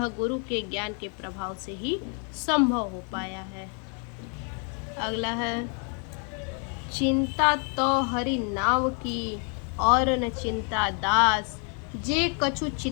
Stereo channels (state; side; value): quieter; right; 39.8 dB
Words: गुरु के ज्ञान के प्रभाव से ही संभव हो पाया है। अगला है, चिंता तो हरि नाव की और न चिंता दास, जे कछु